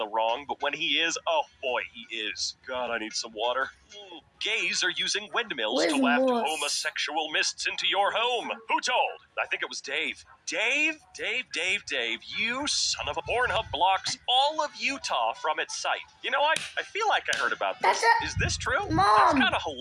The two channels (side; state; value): both; identical; correlation 1.00